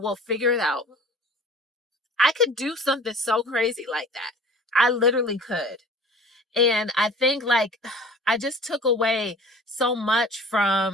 we'll figure it out. I could do something so crazy like that. I literally could. And I think like I just took away so much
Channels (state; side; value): normal; both; correlation 0.44